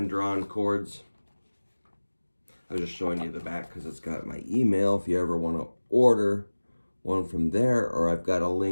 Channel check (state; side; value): inverted; both; correlation -1.00